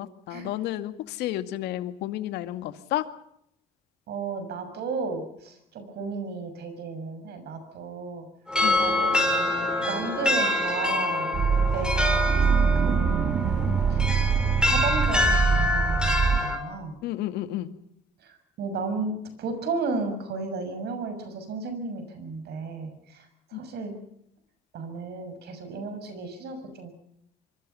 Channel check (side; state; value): both; normal; correlation 0.57